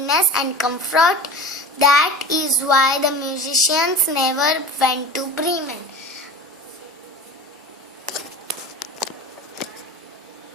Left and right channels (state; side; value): normal; both; correlation 0.35